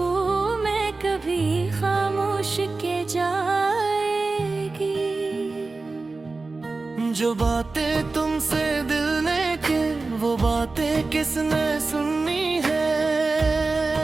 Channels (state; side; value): quieter; left; 3.7 dB